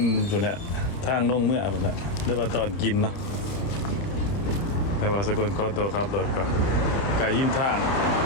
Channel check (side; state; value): right; late; 30 ms